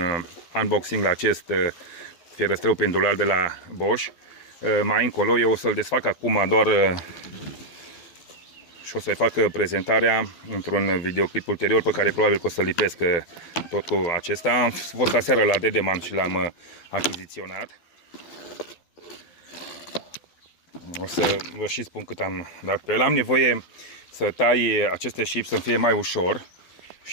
unboxing la acest fierăstrău pendular de la Bosch. Mai încolo eu o să-l desfac acum doar și o să-i fac prezentarea într-un videoclip ulterior pe care probabil că o să-l lipesc tot cu acesta. Am fost aseară la Dedeman și l-am achiziționat. O să vă și spun cât am dat pe el. Am nevoie să tai aceste șipi să fie mai ușor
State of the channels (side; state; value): right; late; 12 ms